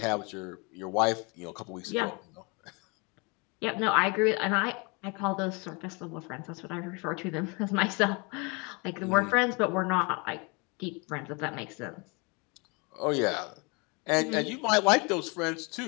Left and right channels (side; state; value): right; quieter; 30.1 dB